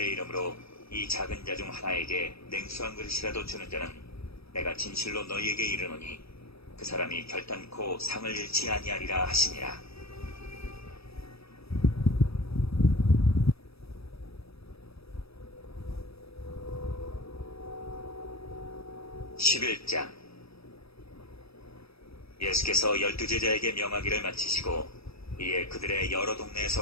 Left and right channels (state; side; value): late; right; 0.77 ms